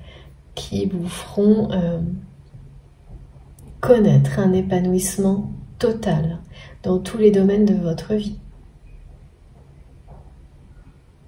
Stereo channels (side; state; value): both; identical; correlation 1.00